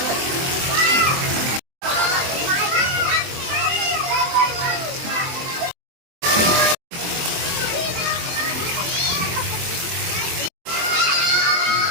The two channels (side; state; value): left; late; 23 ms